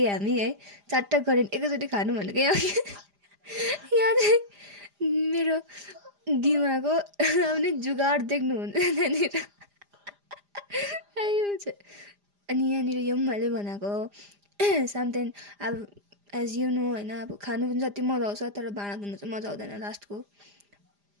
हामी है चारवटा करेन्ट एकैचोटि खानु भनेको यहाँ चाहिँ मेरो दिमागको आउने जुगाड देख्नुहुन्छ त्यहाँनिर अनि यहाँनिर यो पनि मैले बनाएको समथिङ अब एज यु नो होइन अब खानु पनि जति मजा आउँछ तर भाँडा धुनु चाहिँ मजा आउँदैन लास्टको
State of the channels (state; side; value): late; left; 4.9 ms